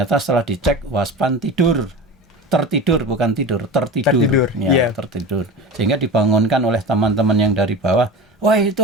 setelah dicek waspan tertidur bukan tidur, tertidur. Tertidur. Sehingga dibangunkan oleh teman-teman yang dari bawah, "Wah, itu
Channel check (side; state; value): both; normal; correlation 0.32